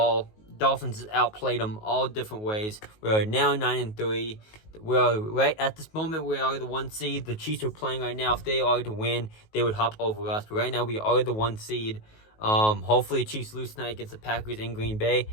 Dolphins outplayed them all different ways. We are now 9-3. We are right at this moment. We are the 1 seed. The Chiefs are playing right now. If they are to win, they would hop over us. But right now, we are the 1 seed. Hopefully, Chiefs lose tonight against the Packers in Green Bay,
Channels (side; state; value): right; late; 19 ms